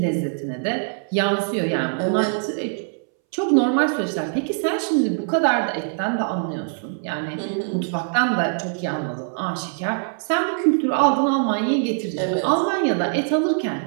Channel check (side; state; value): left; silent; 62 dB below the other